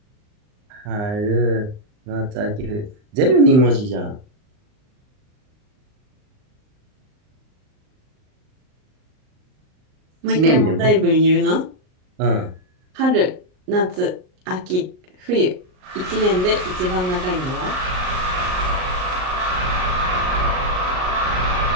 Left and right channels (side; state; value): left; late; 38 ms